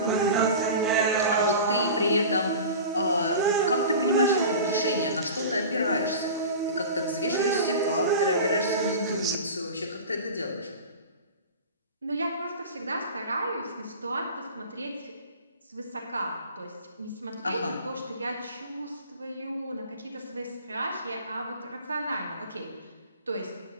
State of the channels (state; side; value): inverted; both; correlation -0.35